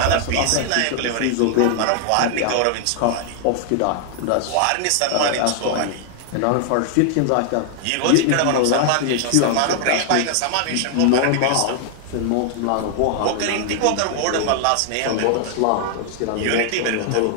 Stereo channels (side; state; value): both; different; correlation 0.00